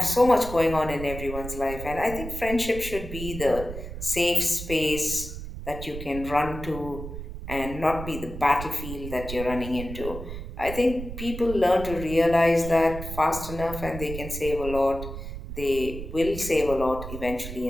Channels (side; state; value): right; noise; rumble, 9 dB below the sound